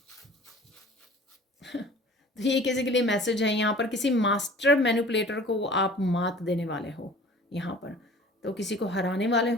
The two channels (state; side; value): normal; both; correlation 0.46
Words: तो ये किसी के लिए मैसेज है यहाँ पर, किसी मास्टर मैनिपुलेटर को आप मात देने वाले हो यहाँ पर, तो किसी को हराने वाले